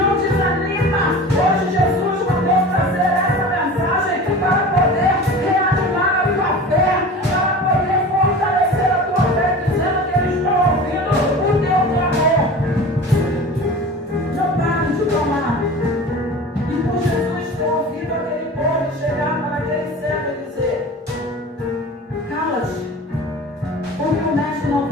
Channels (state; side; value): normal; both; correlation 0.36